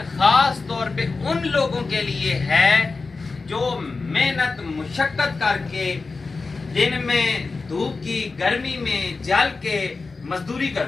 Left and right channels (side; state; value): right; quieter; 4.1 dB